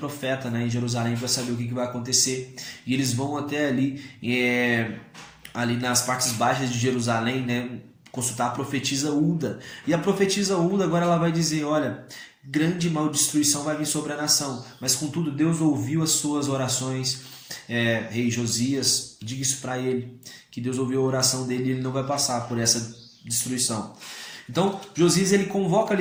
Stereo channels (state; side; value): identical; both; correlation 1.00